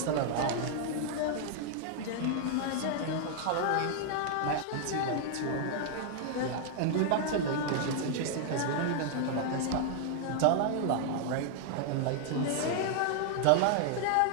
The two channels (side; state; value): both; different; correlation 0.00